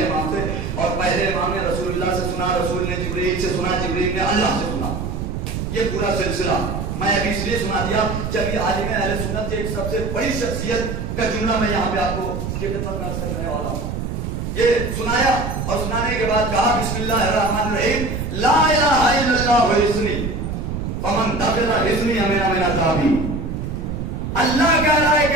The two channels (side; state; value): right; noise; rumble, 4 dB below the sound